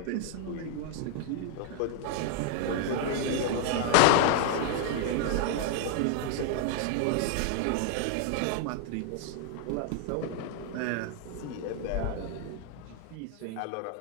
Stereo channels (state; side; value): different; both; correlation 0.00